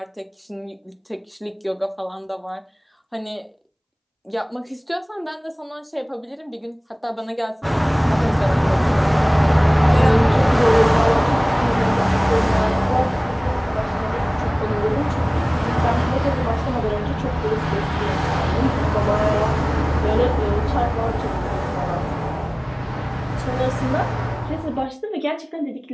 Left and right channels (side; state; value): both; identical; correlation 1.00